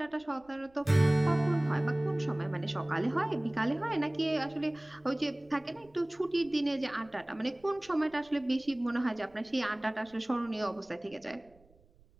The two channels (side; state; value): right; noise; rumble, 30 dB below the sound